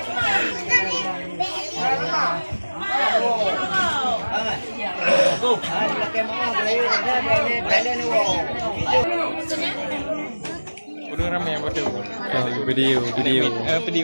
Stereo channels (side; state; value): both; inverted; correlation -1.00